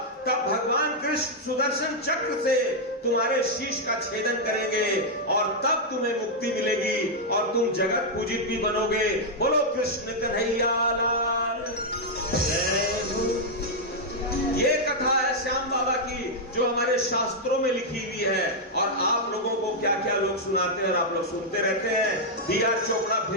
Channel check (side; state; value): both; normal; correlation -0.03